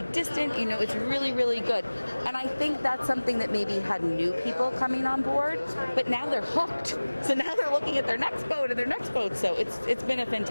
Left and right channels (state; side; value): inverted; both; correlation -1.00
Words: distant, you know, it's really, really good. And I think that's something that maybe had new people coming on board, but now they're hooked. So now they're looking at their next boat and their next boat. So it's been a